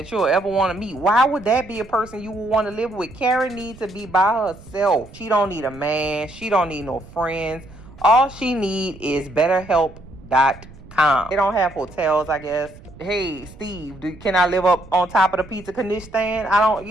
you'll ever want to meet. Why would that be a person you would want to live with? Carrie needs to be by herself. She don't need a man. She don't need no friends. All she need is betterhelp.com. They don't have hotels, I guess. Hey, Steve, can I live up on top of the pizza knish stand? I don't,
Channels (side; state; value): right; noise; rumble, 20 dB below the sound